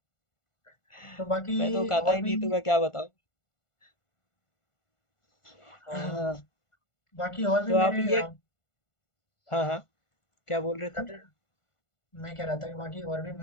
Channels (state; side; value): late; right; 1.5 ms